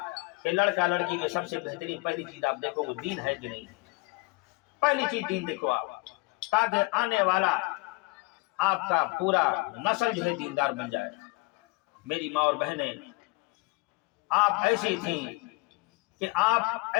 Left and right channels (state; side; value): quieter; right; 25.1 dB